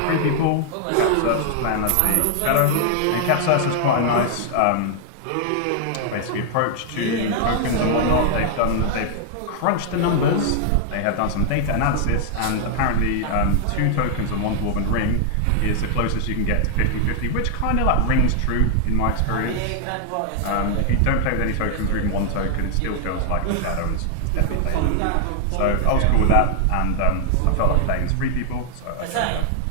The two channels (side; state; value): both; different; correlation 0.00